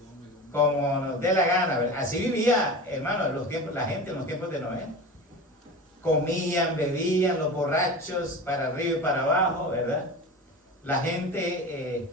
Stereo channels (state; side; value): normal; both; correlation 0.31